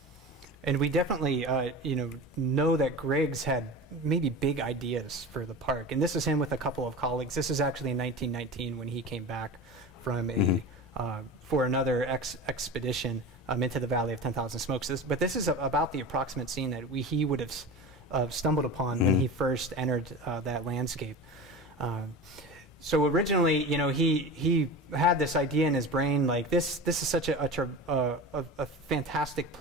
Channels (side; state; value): both; normal; correlation 0.31